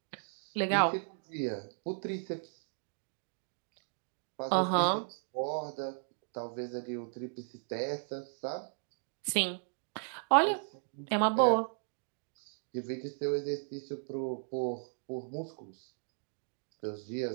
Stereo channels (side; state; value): left; silent; digital silence